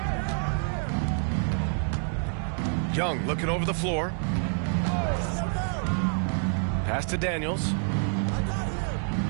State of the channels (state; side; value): silent; left; 58 dB below the other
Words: Young looking over the floor. Pass to Daniels.